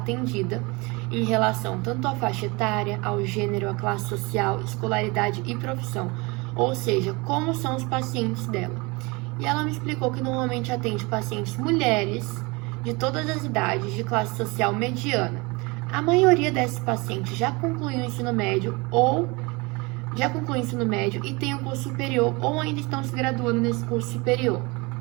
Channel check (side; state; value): left; quieter; 26.1 dB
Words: em relação tanto à faixa etária, ao gênero, à classe social, escolaridade e profissão, ou seja, como são os pacientes dela. E ela me explicou que normalmente atende pacientes mulheres de todas as idades, de classe social mediana. A maioria desses pacientes já concluiu o ensino médio e tem o curso superior ou ainda estão se graduando nesse curso superior.